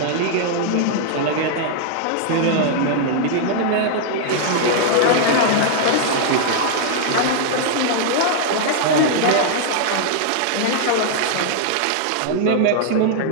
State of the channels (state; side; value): different; both; correlation -0.01